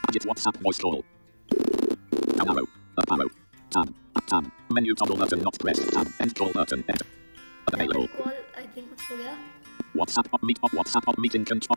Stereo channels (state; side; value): inverted; both; correlation -1.00